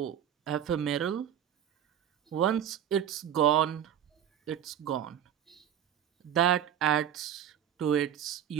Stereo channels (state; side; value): quieter; left; 9.9 dB